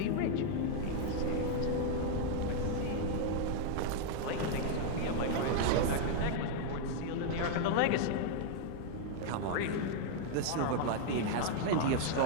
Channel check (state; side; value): different; both; correlation 0.00